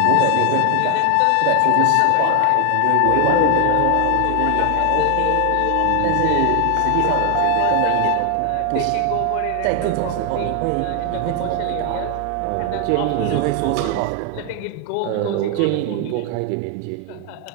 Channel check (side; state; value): both; different; correlation 0.00